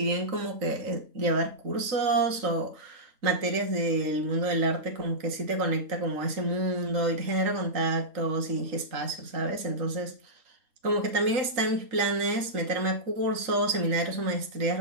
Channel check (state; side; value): late; left; 3.9 ms